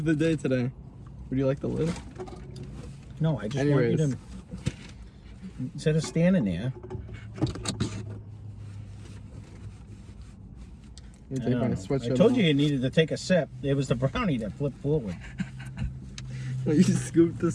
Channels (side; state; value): both; identical; correlation 1.00